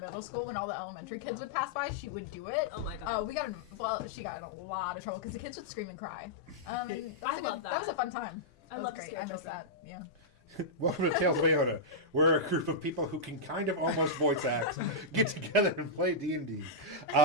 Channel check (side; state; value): both; normal; correlation -0.10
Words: school, when all the elementary kids would pass by, she would do it. Oh my god. She got in a lot of trouble because the kids would scream and cry. And I love That was a that. fun time. I That love was to great. scare I miss children. that. Yeah. Welcome to Tales of Iona. We're a group of people who can kind of almost voice act, get together and play D&D.